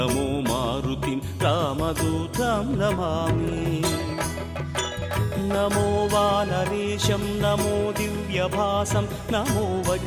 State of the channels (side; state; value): both; identical; correlation 1.00